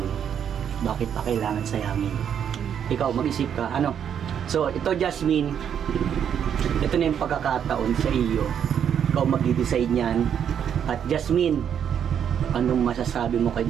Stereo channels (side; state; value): left; quieter; 8.5 dB